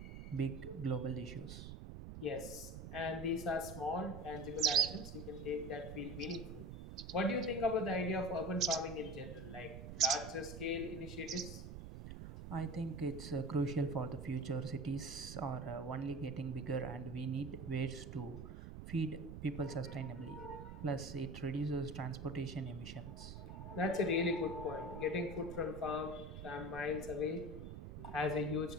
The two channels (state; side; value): noise; right; rumble, 9 dB below the sound